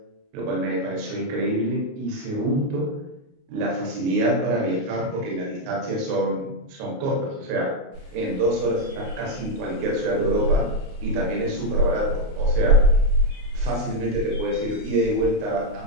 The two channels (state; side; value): late; left; 29 ms